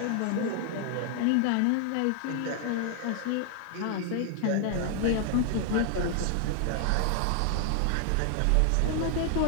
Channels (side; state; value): both; different; correlation 0.00